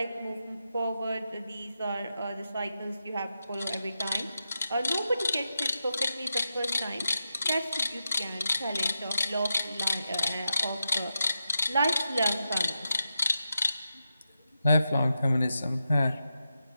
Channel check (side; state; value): both; inverted; correlation -0.88